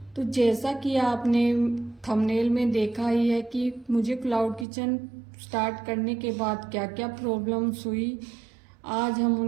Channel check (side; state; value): left; drops out; at 4.7 s